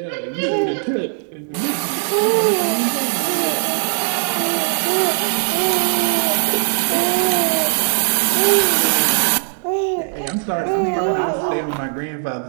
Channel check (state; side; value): silent; left; 57 dB below the other